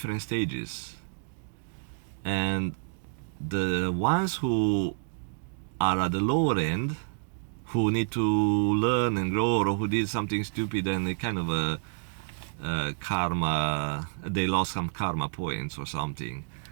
stages. And the ones who are at the lower end, who need to learn and grow, or who did something stupid and they kind of karma, they lost some karma points or something.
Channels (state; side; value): silent; left; digital silence